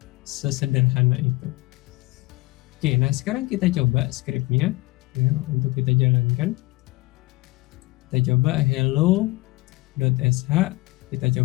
sesederhana itu. Oke, nah sekarang kita coba scriptnya ya, untuk kita jalankan. Kita coba hello.sh, kita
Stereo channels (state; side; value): quieter; right; 21.6 dB